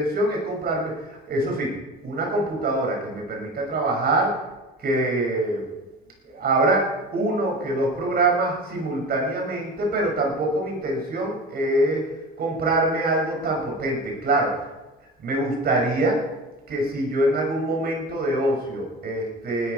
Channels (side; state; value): both; normal; correlation 0.33